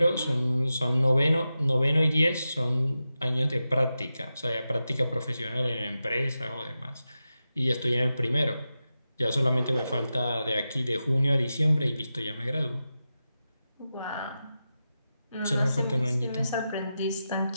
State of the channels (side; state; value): both; inverted; correlation -0.91